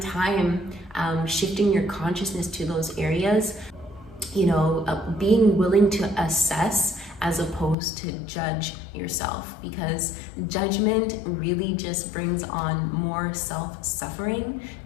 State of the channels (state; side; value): drops out; right; at 7.8 s